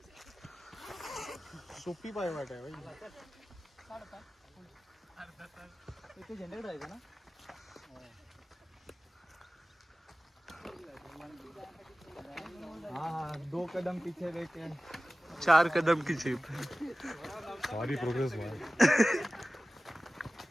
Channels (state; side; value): normal; both; correlation 0.97